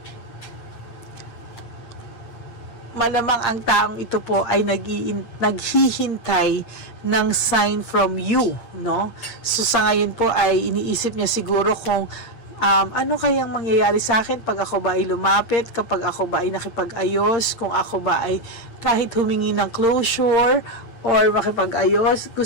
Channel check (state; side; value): late; right; 8.7 ms